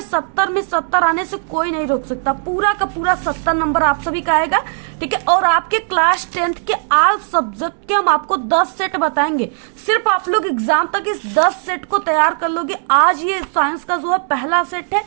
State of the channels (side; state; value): left; silent; digital silence